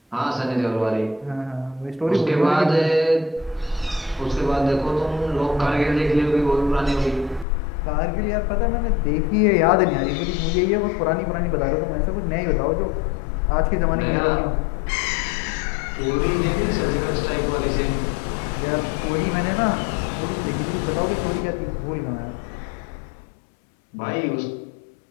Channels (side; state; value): right; drops out; at 7.5 s